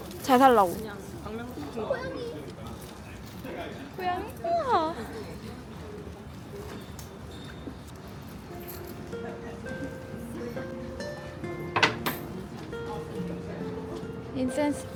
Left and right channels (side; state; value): both; identical; correlation 1.00